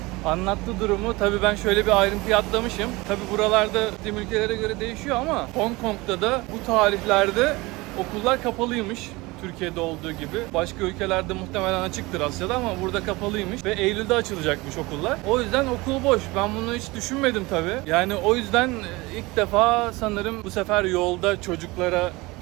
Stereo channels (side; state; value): left; quieter; 22.6 dB